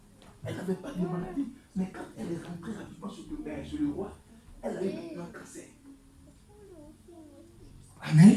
Elle n'avait pas de maladie, mais quand elle est rentrée rapidement sur le roi, elle a eu un cancer.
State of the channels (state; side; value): identical; both; correlation 1.00